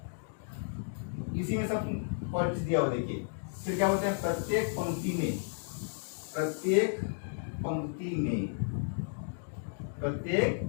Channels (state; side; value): silent; right; digital silence